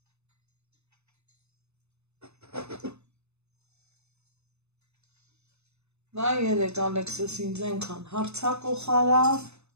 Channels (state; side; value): late; left; 0.81 ms